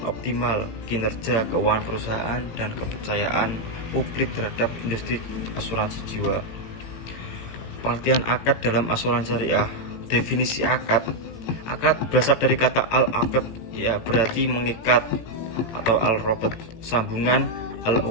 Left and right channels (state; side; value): late; right; 18 ms